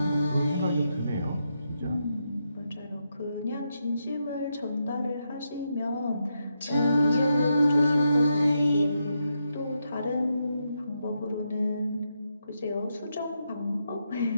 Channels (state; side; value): inverted; both; correlation -0.83